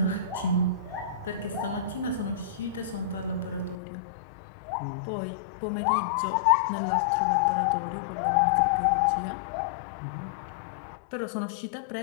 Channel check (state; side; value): drops out; right; at 3.8 s